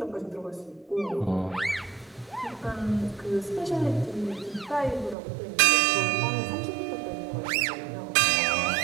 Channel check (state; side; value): drops out; left; at 5.2 s